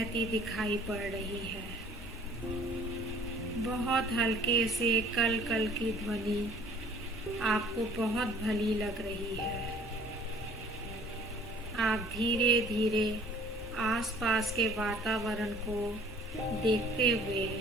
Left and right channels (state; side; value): normal; both; correlation 0.52